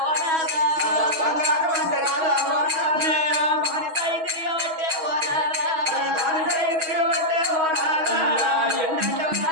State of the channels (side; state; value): left; late; 6.3 ms